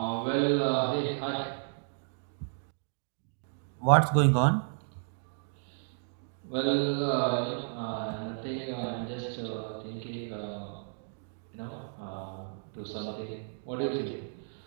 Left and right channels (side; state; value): left; silent; digital silence